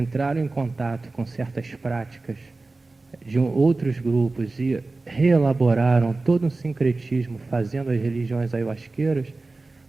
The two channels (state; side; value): quieter; left; 3.4 dB